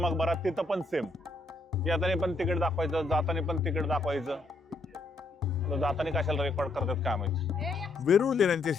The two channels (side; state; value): right; quieter; 3.1 dB